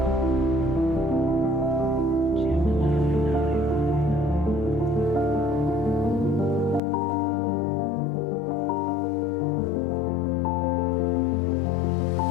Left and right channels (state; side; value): drops out; right; at 6.8 s